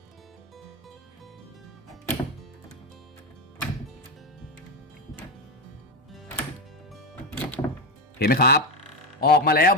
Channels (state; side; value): normal; both; correlation 0.12